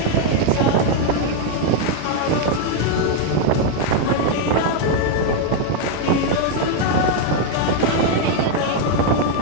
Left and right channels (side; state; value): both; different; correlation 0.00